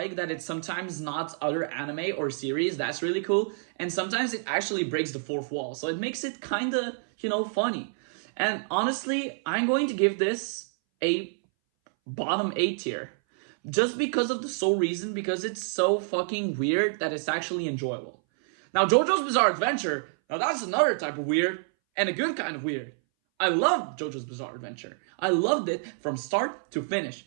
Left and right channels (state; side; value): silent; left; 59 dB below the other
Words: that it's sometimes not other anime or series. That's really cool. And sometimes it actually breaks the fourth wall. So it makes it kind of, funny. And honestly, I'm going to give this a bottom A tier. Just because of the sole reason, because it's so fucking weird that it's actually enjoyable. Now, JoJo's Bizarre Adventure, now that's another type of weird, and a good kind of weird. I loved JoJo's Bizarre Adventure. I loved it from start to finish.